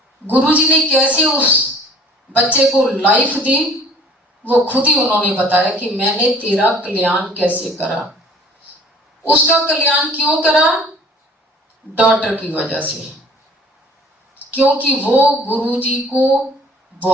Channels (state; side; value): normal; both; correlation 0.51